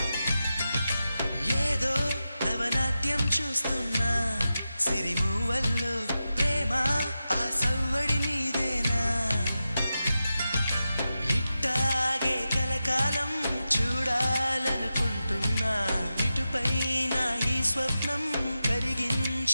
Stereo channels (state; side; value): inverted; both; correlation -0.91